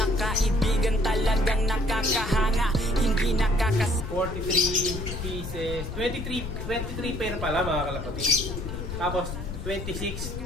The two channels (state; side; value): noise; left; rumble, 6 dB below the sound